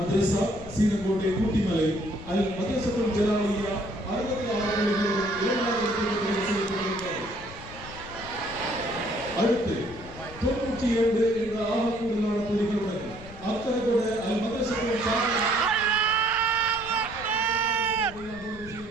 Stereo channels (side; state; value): left; noise; rumble, 16 dB below the sound